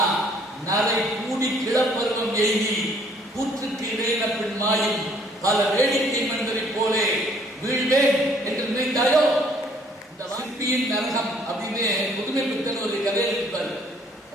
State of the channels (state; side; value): normal; both; correlation 0.61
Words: நரை கூடி கிளப்பருவம் எய்தி கூற்றுக்கு இடையின பின் மாயும் பல வேடிக்கை மனிதரை போலே வீழ்வேன் என்று நினைத்தாயோ. இந்த சிற்பியின் நரகம் அப்படின்னு புதுமை பித்தன் ஒரு கதையை இருப்பாரு.